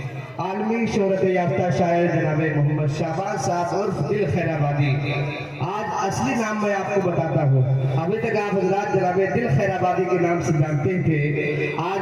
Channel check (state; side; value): identical; both; correlation 1.00